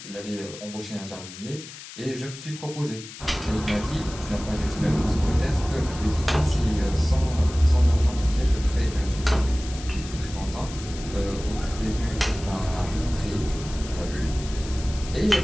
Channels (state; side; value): noise; left; hiss, 14 dB below the sound